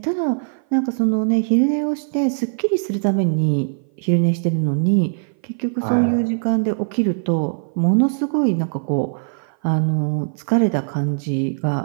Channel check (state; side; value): silent; left; 57 dB below the other